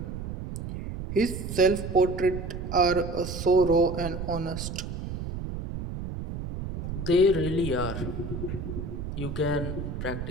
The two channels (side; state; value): right; noise; rumble, 6 dB below the sound